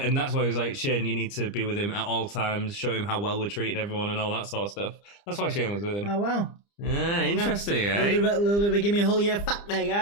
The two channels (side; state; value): right; late; 30 ms